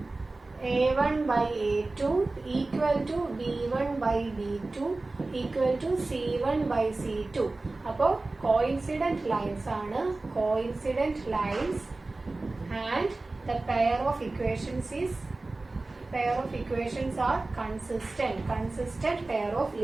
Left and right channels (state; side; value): quieter; left; 3.2 dB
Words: A1/A2 equal to B1/B2 equal to C1/C2. അപ്പോൾ കോയിൻസിഡന്റ് ലൈൻസ് ആണ്. Coincident lines and the pair of equations are consistent pair of